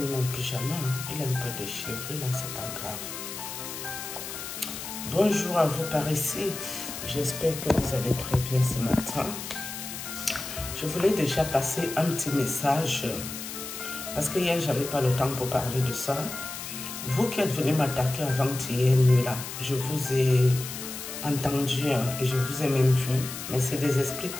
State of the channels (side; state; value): left; noise; hiss, 8 dB below the sound